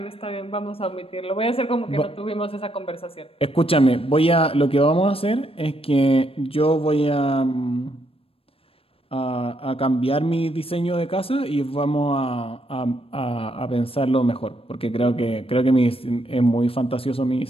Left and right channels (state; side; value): late; right; 0.28 ms